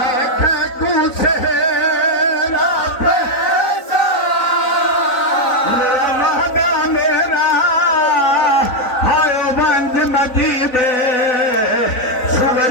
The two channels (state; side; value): late; right; 3.9 ms